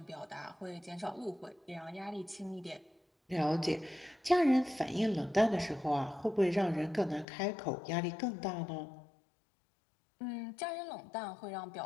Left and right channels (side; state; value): right; drops out; at 7.2 s